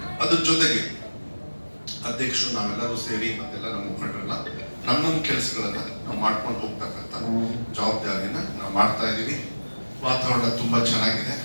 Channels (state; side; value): inverted; both; correlation -1.00